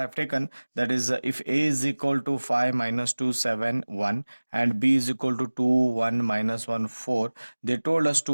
have taken, that is if a is equal to 5 minus 2 7 1 and b is equal to 2 1 minus 1 4. They told us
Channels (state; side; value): inverted; both; correlation -1.00